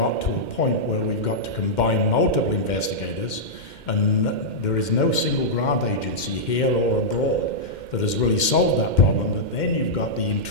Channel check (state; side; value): late; right; 2.1 ms